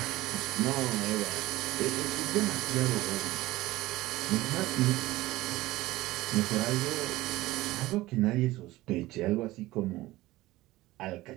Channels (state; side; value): quieter; left; 18.1 dB